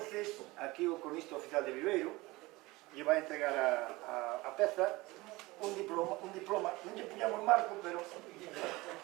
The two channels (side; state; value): left; quieter; 21.4 dB